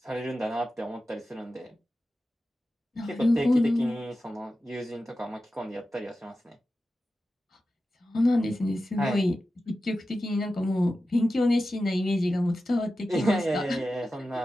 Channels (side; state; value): both; normal; correlation 0.93